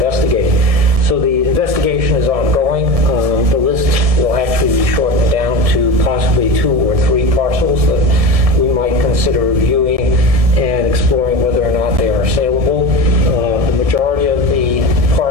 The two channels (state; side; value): late; left; 1.7 ms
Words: So the investigation is ongoing. The list will actually be shortened down to possibly 2 or 3 parcels that we might consider reviewing and exploring whether or not they are saleable. The majority of the